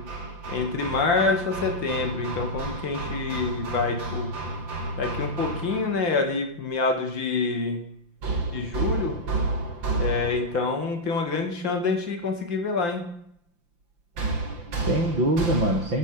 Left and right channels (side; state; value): left; late; 5.8 ms